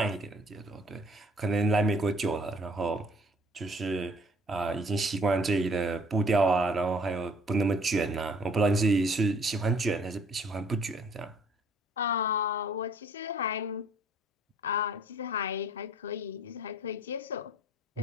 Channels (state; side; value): normal; both; correlation 0.57